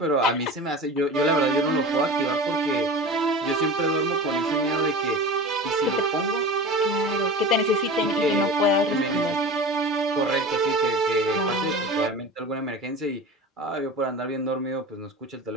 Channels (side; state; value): both; normal; correlation 0.33